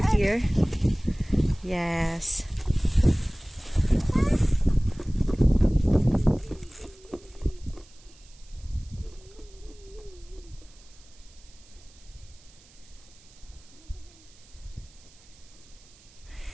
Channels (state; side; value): noise; right; hiss, 26 dB below the sound